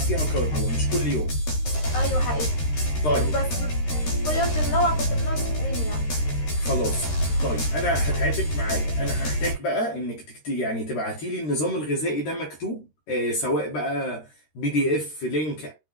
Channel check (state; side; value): late; right; 13 ms